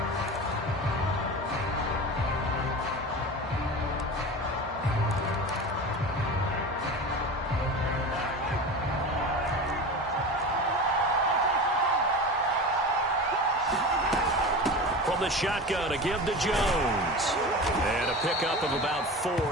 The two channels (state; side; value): normal; both; correlation 0.30